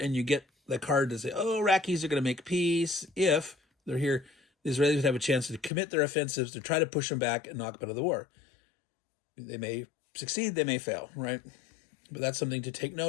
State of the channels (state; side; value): drops out; right; at 5.7 s